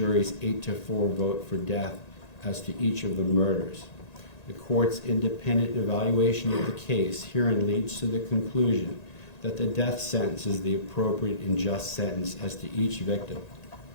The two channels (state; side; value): late; right; 1.9 ms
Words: 8-4 vote for death as to each of the murders. The court's independent evaluation of the case herein leads to the conclusion that the death sentence is the appropriate and just sentence as to each victim.